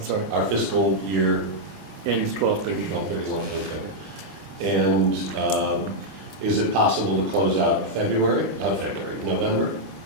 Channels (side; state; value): left; late; 20 ms